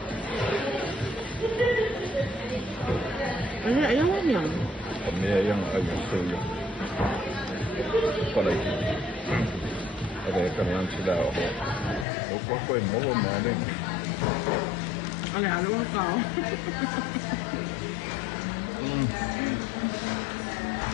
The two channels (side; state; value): right; drops out; at 12.1 s